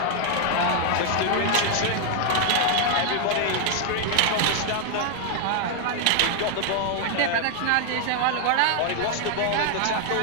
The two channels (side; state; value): both; different; correlation 0.00